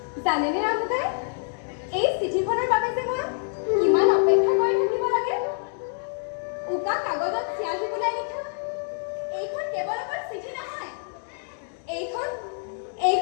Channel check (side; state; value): right; silent; digital silence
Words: জানেনে ৰামুদাই এই চিঠিখনৰ বাবে যে মই কিমান অপেক্ষা কৰি থাকিব লাগে উকা কাগজত চিয়াহী বুলাই লিখা এইখন কেৱল অকল চিঠি নহয়